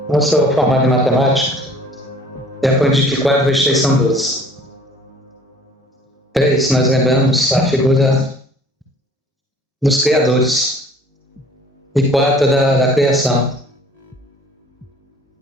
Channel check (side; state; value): both; normal; correlation 0.52